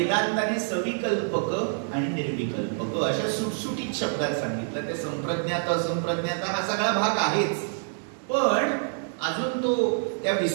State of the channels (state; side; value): silent; left; digital silence